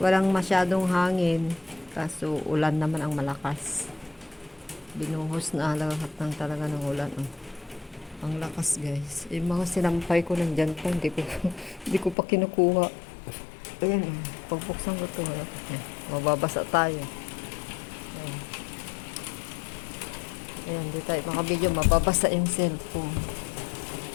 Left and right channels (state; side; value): drops out; right; at 12.2 s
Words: masyadong hangin. Kaso, ulan naman ang malakas. Binuhos na lahat ng talaga ng ulan. Oh. Ang lakas, guys. Yung mga sinampay ko nandyan pa. Hindi ko pa kinukuha. Ayan, pagbuksan ko ito. Mababasa tayo. Ayan, di tayo makabidyo. Mababasa yung cellphone.